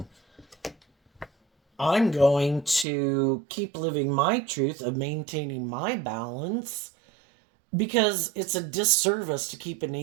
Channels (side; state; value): left; drops out; at 2.9 s